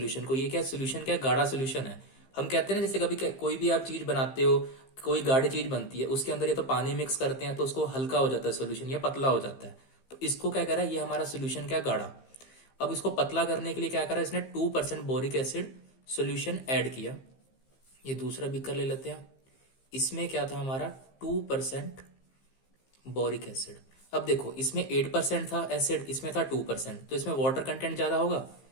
को। ये क्या सोल्यूशन, क्या गाढ़ा सोल्यूशन है। हम कहते हैं ना जैसे कभी कोई भी आप चीज बनाते हो, कोई गाढ़ी चीज बनती है, उसके अंदर ये तो पानी मिक्स करते हैं तो उसको हल्का हो जाता है सोल्यूशन, या पतला हो जाता है। तो इसको क्या कह रहा है, ये हमारा सोल्यूशन क्या गाढ़ा। अब इसको पतला करने के लिए क्या करा, इसने 2% बोरिक एसिड सोल्यूशन ऐड किया। ये दूसरा बीकर ले लेते हैं, इसमें क्या था हमारा 2% बोरिक एसिड। अब देखो इसमें 8% था एसिड, इसमें था 2%, तो इसमें वाटर कंटेंट ज्यादा होगा।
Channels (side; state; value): right; late; 15 ms